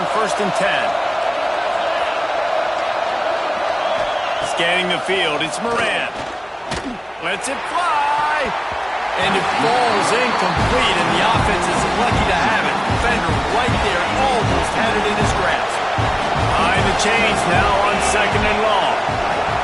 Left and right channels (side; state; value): both; identical; correlation 1.00